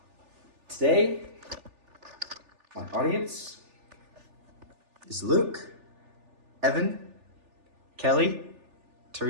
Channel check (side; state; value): left; late; 3.4 ms